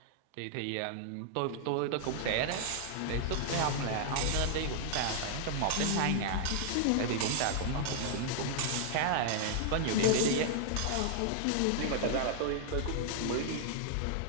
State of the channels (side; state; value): both; different; correlation 0.00